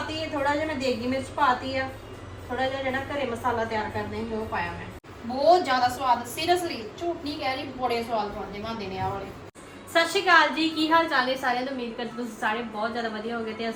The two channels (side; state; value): both; identical; correlation 1.00